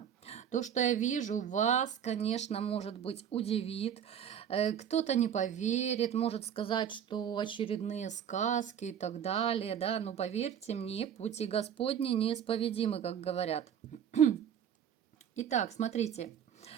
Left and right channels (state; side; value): quieter; left; 8.8 dB